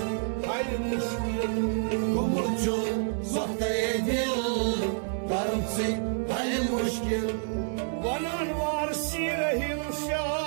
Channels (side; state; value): left; silent; digital silence